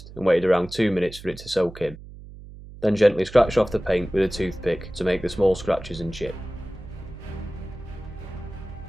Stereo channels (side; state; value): right; noise; hum, 16 dB below the sound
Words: and waited around 2 minutes for it to soak in. Then gently scratched off the paint with a toothpick to make the small scratches and chip.